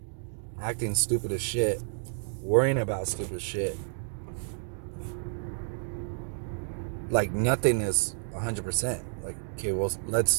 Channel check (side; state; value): left; silent; digital silence